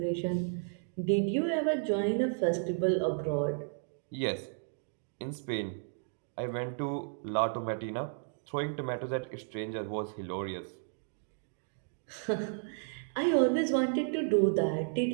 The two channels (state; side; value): silent; left; digital silence